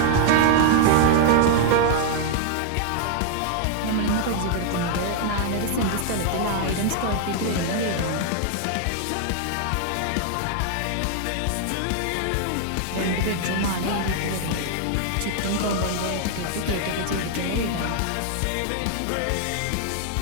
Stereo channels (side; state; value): both; different; correlation 0.00